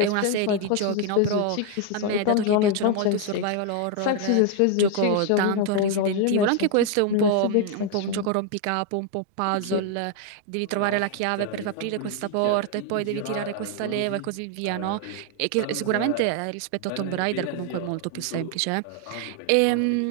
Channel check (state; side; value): different; both; correlation 0.00